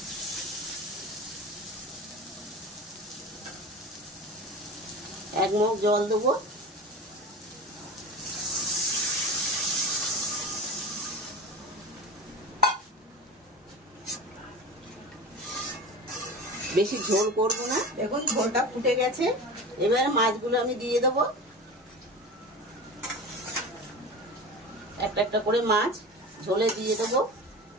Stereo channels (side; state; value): both; normal; correlation 0.31